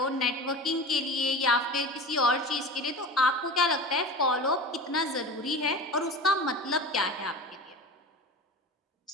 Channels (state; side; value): normal; both; correlation 0.33